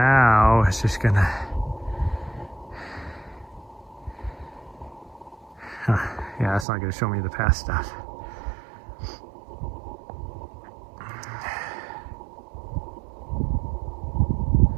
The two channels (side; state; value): left; drops out; at 6.7 s